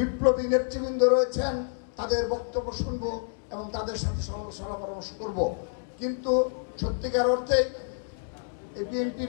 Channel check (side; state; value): right; silent; digital silence